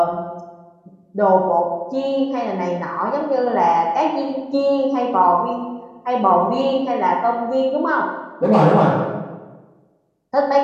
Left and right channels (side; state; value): both; identical; correlation 1.00